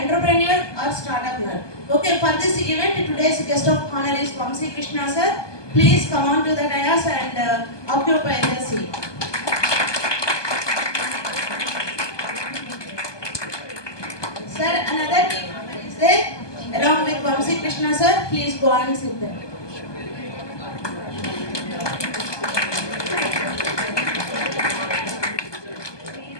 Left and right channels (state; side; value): late; right; 1.2 ms